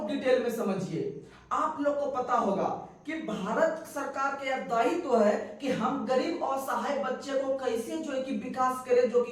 डिटेल में समझिए। आप लोग को पता होगा कि भारत सरकार का यह दायित्व है कि हम गरीब और असहाय बच्चे को कैसे जो है कि विकास करें, जो कि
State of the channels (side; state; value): both; identical; correlation 1.00